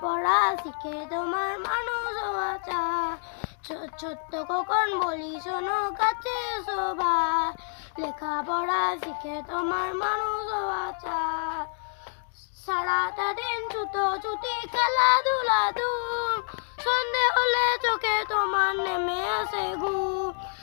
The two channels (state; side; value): silent; right; 60 dB below the other